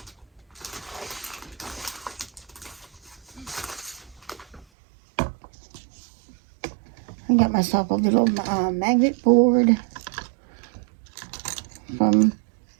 I got myself a little magnet board from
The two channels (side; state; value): left; drops out; at 4.7 s